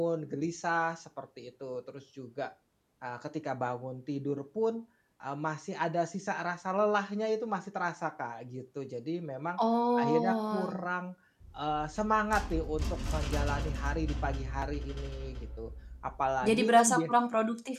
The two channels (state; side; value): identical; both; correlation 1.00